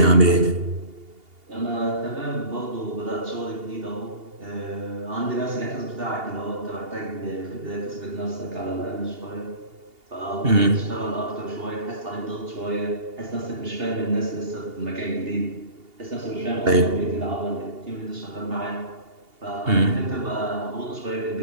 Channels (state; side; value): late; left; 2.8 ms